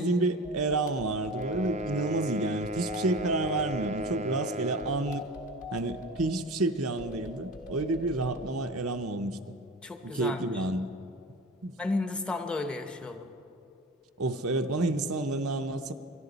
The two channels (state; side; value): normal; both; correlation 0.34